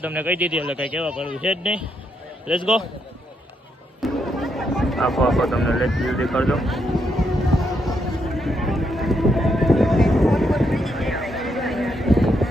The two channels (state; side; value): normal; both; correlation 0.78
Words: તમને કહી દીધી એટલે કંઈ કહેવા પડવું છે જ નહીં. Let's go. આપો તમને લેટ જલ્દી કરજો.